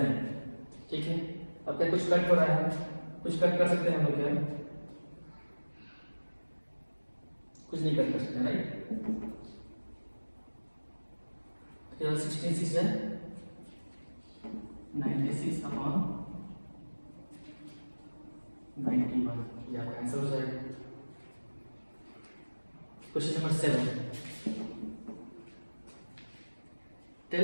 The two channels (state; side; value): inverted; both; correlation -1.00